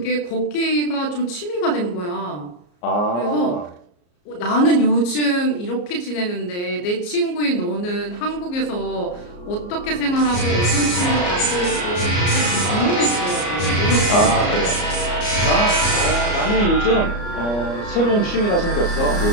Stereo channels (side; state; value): right; late; 34 ms